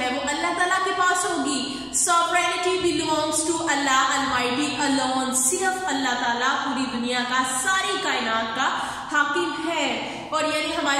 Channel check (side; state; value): both; identical; correlation 1.00